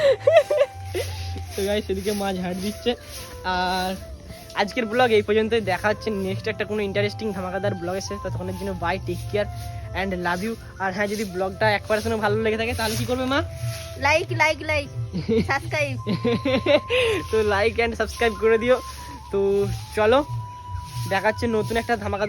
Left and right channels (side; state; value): both; identical; correlation 1.00